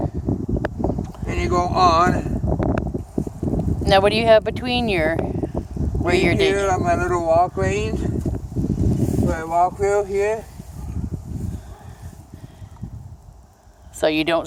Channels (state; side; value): identical; both; correlation 1.00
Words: and you go on. Now, what do you have between your where you're digging? Here on my little walk lanes, my walk wheel here. So you don't